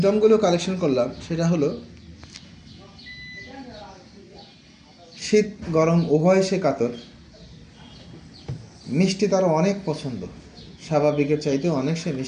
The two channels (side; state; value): both; identical; correlation 1.00